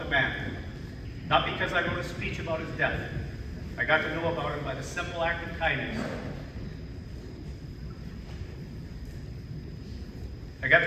the man. Not because I wrote a speech about his death. I got to know about him by the simple act of kindness.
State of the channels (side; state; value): both; identical; correlation 1.00